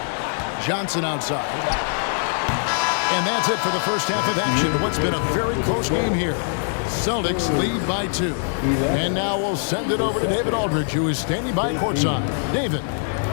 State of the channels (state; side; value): silent; right; digital silence